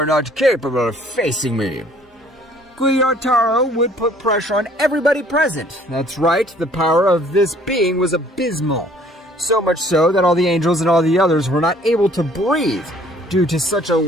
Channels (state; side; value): normal; both; correlation 0.58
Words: not capable of facing me. Gyotaro would put pressure on everybody present. That's right, the power of this being was abysmal. So much so that all the angels and all the others were not able to breathe due to such